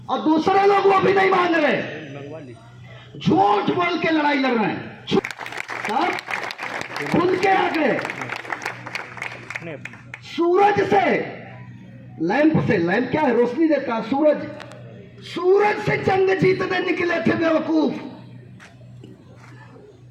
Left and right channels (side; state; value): both; identical; correlation 1.00